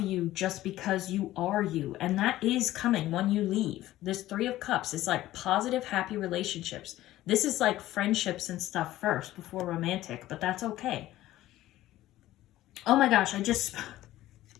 you just because you are you. And that is coming when you leave. This 3 of Cups is like positive, happy relationships. This is like friendships and stuff first before romantic, but that's okay. Oh my gosh, I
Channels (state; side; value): quieter; right; 15.2 dB